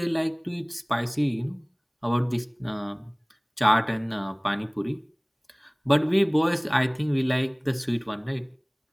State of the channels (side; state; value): both; identical; correlation 1.00